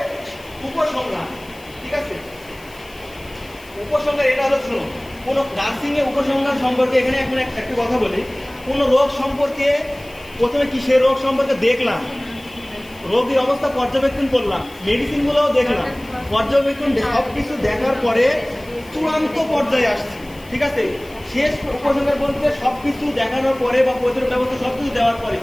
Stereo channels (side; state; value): left; noise; hiss, 24 dB below the sound